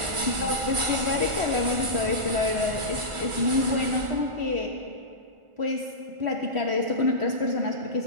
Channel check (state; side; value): late; left; 1.4 ms